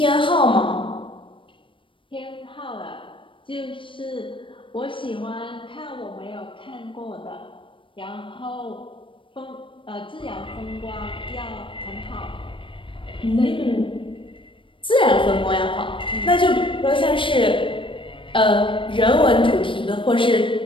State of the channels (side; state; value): right; late; 0.25 ms